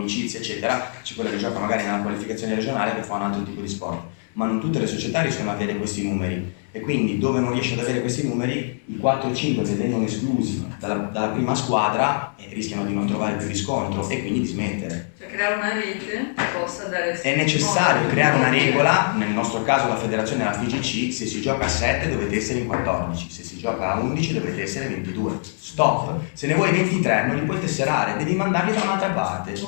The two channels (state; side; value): silent; right; 61 dB below the other